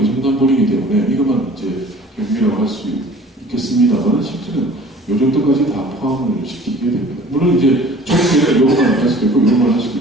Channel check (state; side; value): normal; both; correlation 0.48